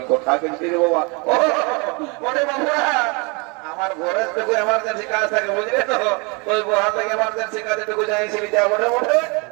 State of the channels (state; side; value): quieter; left; 30.4 dB